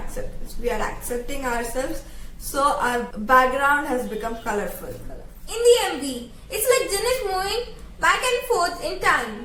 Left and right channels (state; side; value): identical; both; correlation 1.00